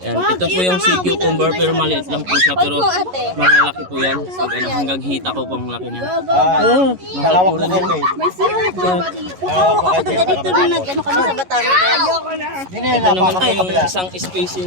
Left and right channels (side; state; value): left; late; 11 ms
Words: Ito po yung sea cucumber pero maliit lang po siya. Pero malalaki po yan. Hanggang hita ko pong laki niya. Oh, Mahal po rin yan. May sira ka ba dito? Ako dito na nag-ano kami sa Batangas. Ito naman po yung isang species